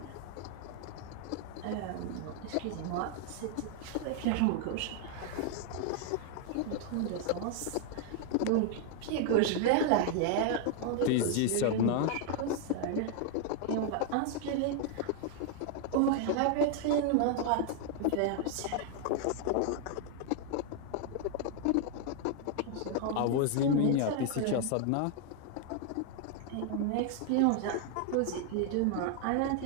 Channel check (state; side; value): different; both; correlation 0.00